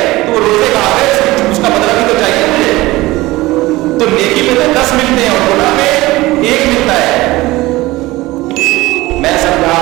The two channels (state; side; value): quieter; left; 19.3 dB